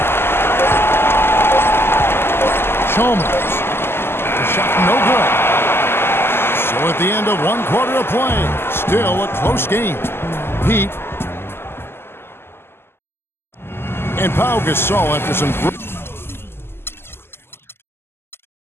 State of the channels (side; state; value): right; late; 0.12 ms